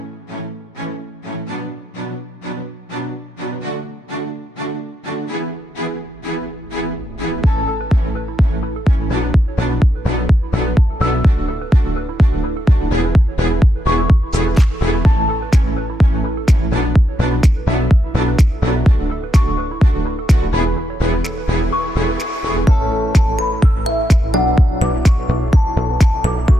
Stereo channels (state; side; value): normal; both; correlation 0.82